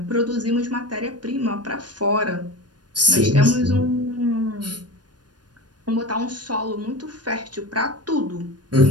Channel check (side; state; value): left; late; 0.69 ms